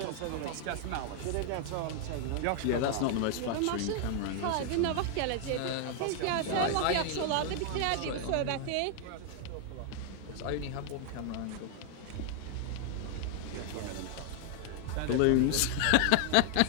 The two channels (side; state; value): both; different; correlation 0.00